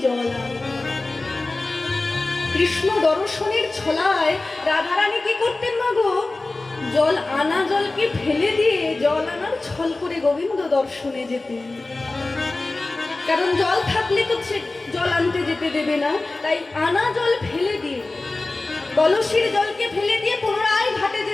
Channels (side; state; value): right; quieter; 3.2 dB